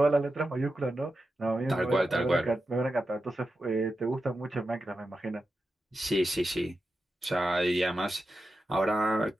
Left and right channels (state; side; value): normal; both; correlation 0.90